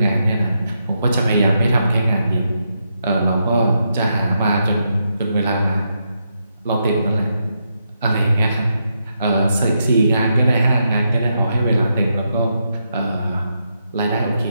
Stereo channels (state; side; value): inverted; both; correlation -0.82